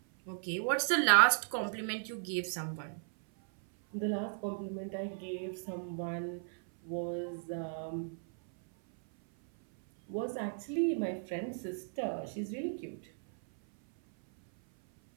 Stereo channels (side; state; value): left; silent; 54 dB below the other